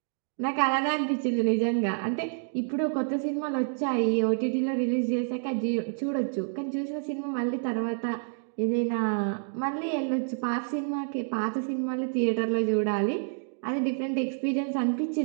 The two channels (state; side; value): silent; left; digital silence